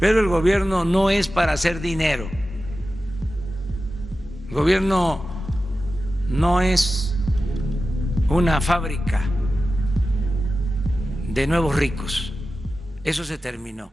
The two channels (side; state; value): both; normal; correlation 0.93